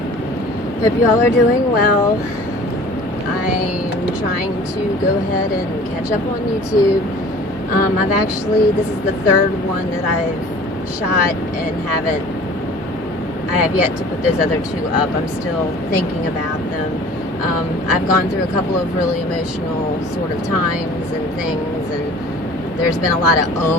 Hope you all are doing well. I'm trying to go ahead and catch up on YouTube. This is the third one that I've shot and I have yet to put those other two up. I'm still thinking about them. I've gone through a couple of really emotional sort of times and things, and there's been a lot of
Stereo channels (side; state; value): both; normal; correlation 0.46